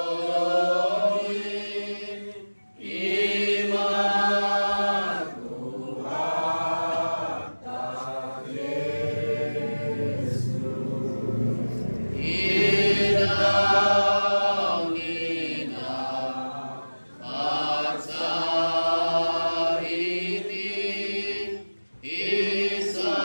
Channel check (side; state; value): both; inverted; correlation -1.00